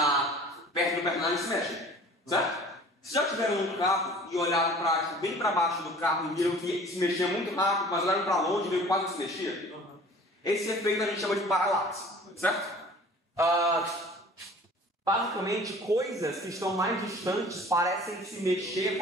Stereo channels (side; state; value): both; normal; correlation 0.47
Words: perto do personagem se mexem, certo? Se já tiveram um carro e olharam bem para baixo do carro e viram que se mexia muito rápido, mas olharam para longe e viram que quase não se mexia? Esse efeito a gente chama de paralaxe, certo? Basicamente, coisas que estão mais distantes parecem se mexer